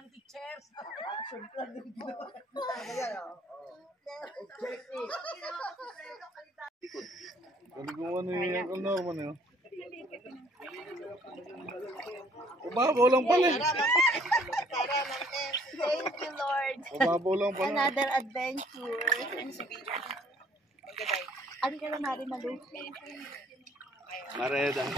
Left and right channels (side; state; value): both; normal; correlation 0.60